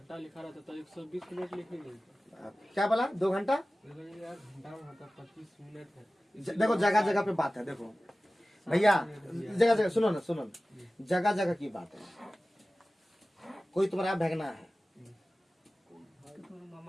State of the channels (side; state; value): both; normal; correlation 0.97